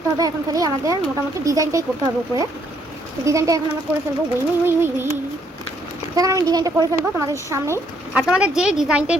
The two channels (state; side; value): normal; both; correlation 0.69